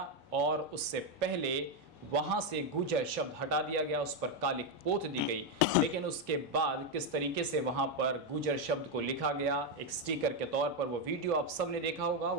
और उससे पहले वहां से गुजर शब्द हटा दिया गया, उस पर कालिक पोत दी गई। लेकिन उसके बाद किस तरीके से वहां पर गुजर शब्द को लिखा गया एक स्टिकर के तौर पर, वो वीडियो आप सबने देखा होगा।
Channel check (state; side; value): normal; both; correlation 0.05